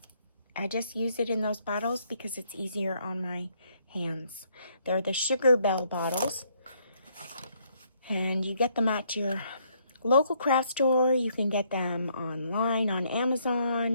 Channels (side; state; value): both; inverted; correlation -0.70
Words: I just use it in those bottles because it's easier on my hands. They're the Sugar Bell bottles. And you get them at your local craft store. You can get them online on